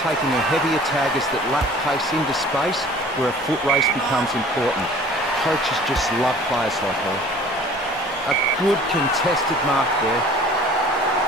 taking her heavier taggers that lack pace into space where a foot race becomes important. Coaches just love players like her. A good contested mark there.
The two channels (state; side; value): normal; both; correlation 0.47